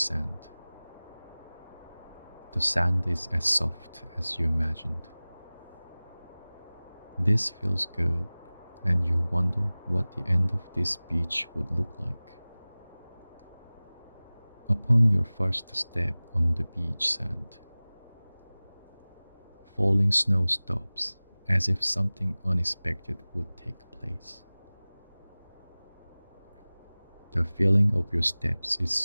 The sand is as soft as you imagined. This feels good, and you wonder what the end of this beach would look like. Upon your first step on the beach sand, falling snow stops as if something unexpected would take place. The feeling of your steps is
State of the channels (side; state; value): both; inverted; correlation -1.00